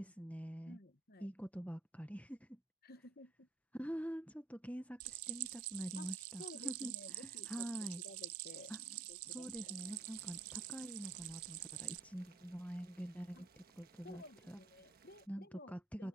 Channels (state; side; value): quieter; left; 3.3 dB